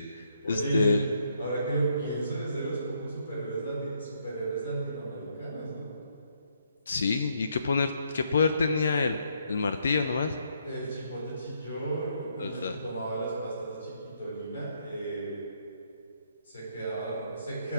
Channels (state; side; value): inverted; both; correlation -0.73